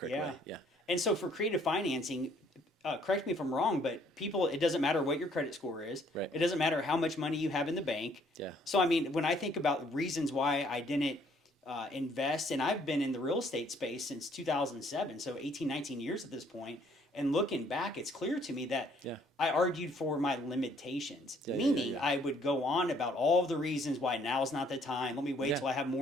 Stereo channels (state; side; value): normal; both; correlation 0.63